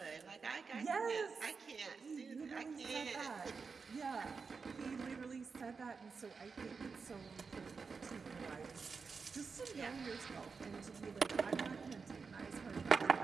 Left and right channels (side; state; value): left; quieter; 5.0 dB